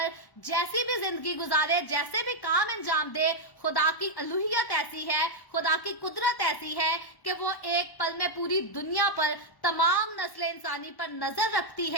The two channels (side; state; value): right; late; 1.1 ms